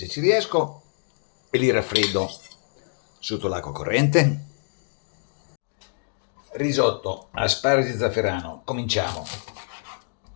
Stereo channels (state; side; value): silent; right; digital silence